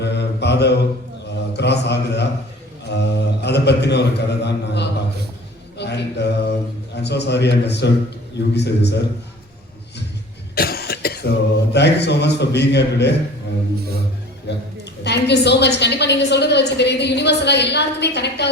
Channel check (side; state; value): both; normal; correlation 0.44